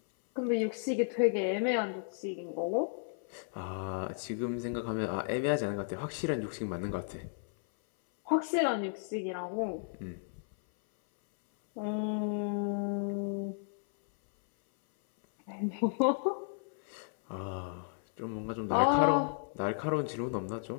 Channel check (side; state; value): right; silent; 55 dB below the other